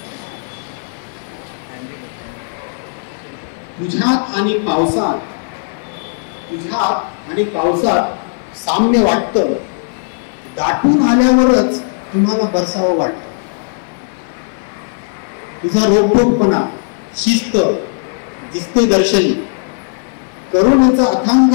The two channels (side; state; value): right; silent; 58 dB below the other